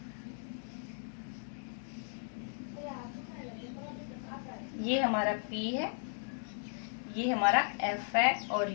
ये हमारा P है ये हमारा F है और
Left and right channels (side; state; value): right; silent; digital silence